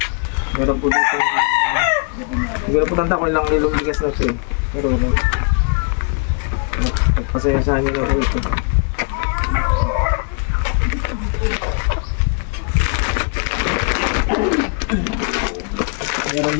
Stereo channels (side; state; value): right; quieter; 38.8 dB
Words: Meron po dito, siguro po tanda ko ilang kilong bigas na ito eh. Pero, pagpasensya nyo na po ito. Meron